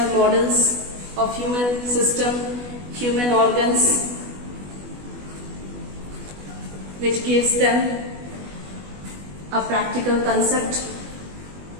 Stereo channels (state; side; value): late; left; 20 ms